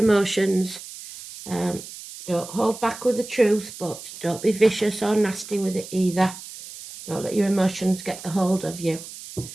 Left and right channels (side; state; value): right; noise; hiss, 14 dB below the sound